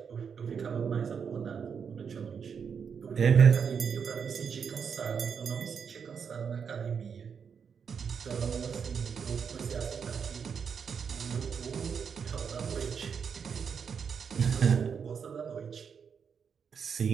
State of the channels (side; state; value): left; quieter; 6.7 dB